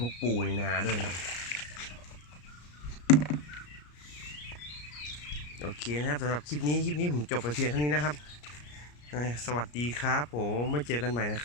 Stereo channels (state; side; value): late; right; 34 ms